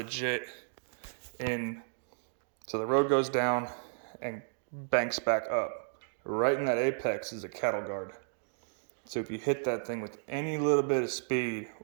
in, so the road goes down and banks back up. Right in that apex is a cattle guard. So if you hit that thing with any little bit of speed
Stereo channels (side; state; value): left; silent; digital silence